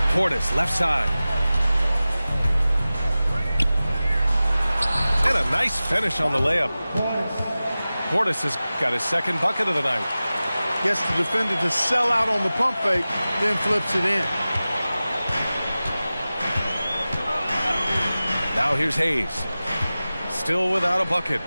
Portis, left side. And a nice finish on the layup. Portis has got his 2nd bucket of the night. Gets the defender to sell out on the pump fake, then flips it in. Now here's Hayes. Still without a bucket.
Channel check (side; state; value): both; inverted; correlation -0.96